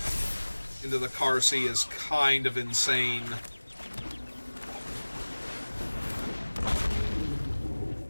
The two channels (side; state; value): both; inverted; correlation -1.00